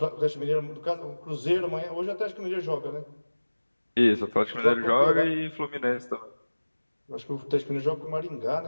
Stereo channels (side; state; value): both; inverted; correlation -1.00